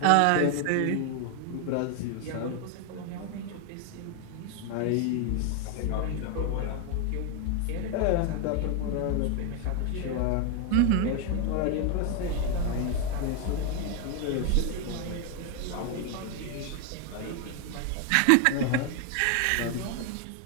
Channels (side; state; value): both; different; correlation 0.01